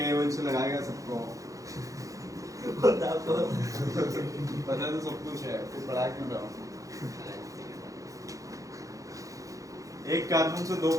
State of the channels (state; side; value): late; left; 0.16 ms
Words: से लगाएगा सबको, पता आपको। पता तो सब कुछ है, फिर पढ़ा क्यों रहा हूँ। एक कार्बन से 2